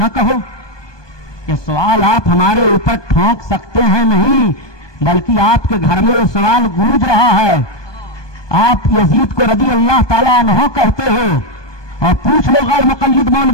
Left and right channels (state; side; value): late; right; 1.2 ms